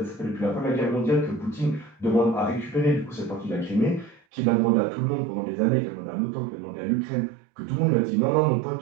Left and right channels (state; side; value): drops out; left; at 4.2 s